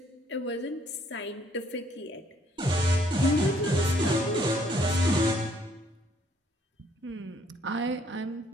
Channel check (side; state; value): both; normal; correlation 0.66